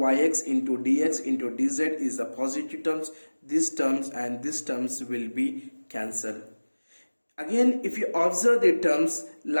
into dx into dz is a positive terms, these terms and these terms will be cancelled. Again if you observe the terms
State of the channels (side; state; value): both; inverted; correlation -1.00